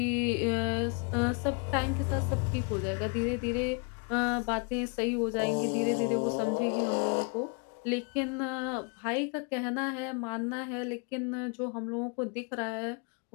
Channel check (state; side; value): quieter; right; 35.5 dB